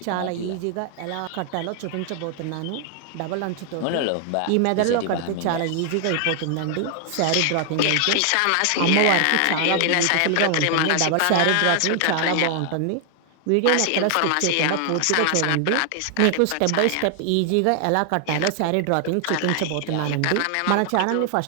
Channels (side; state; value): both; different; correlation 0.00